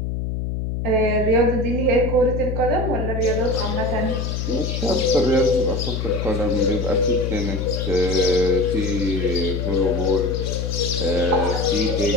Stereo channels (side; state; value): left; noise; hum, 2 dB below the sound